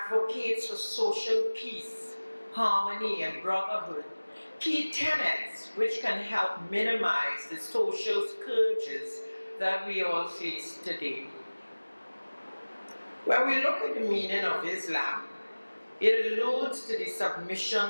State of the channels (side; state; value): both; inverted; correlation -1.00